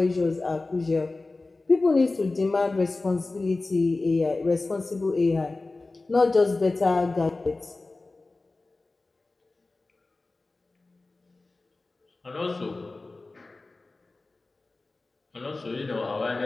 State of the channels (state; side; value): quieter; right; 3.3 dB